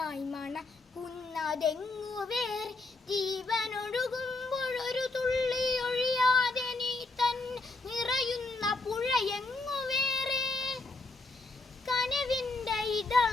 മണക്കുന്നതെങ്ങു വേറെ. ജീവനൊഴുകുമ്പോൾ ഒരു തുള്ളി ഒഴിയാതെ നീ തന്നെ നിറയുന്ന പുഴയെങ്ങു വേറെ. കനവിൻ്റെ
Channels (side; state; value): right; quieter; 3.3 dB